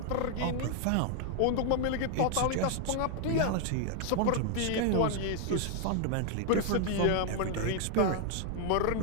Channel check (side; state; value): both; different; correlation 0.00